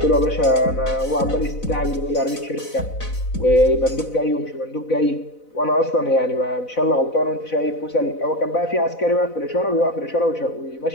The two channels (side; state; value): right; late; 4.0 ms